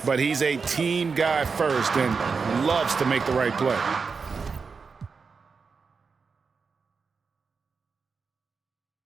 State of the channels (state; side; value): quieter; left; 5.1 dB